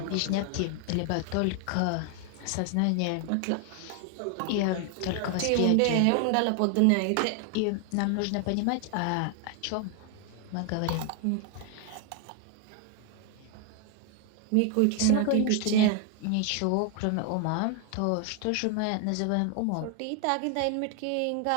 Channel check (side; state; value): both; different; correlation 0.00